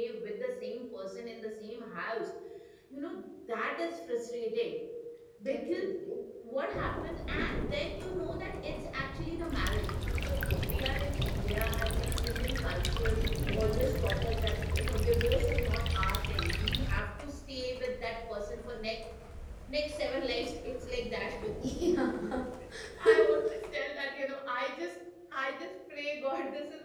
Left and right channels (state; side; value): identical; both; correlation 1.00